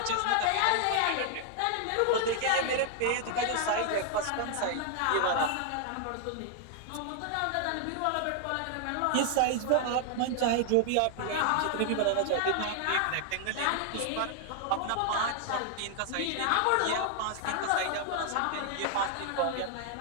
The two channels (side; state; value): both; different; correlation 0.00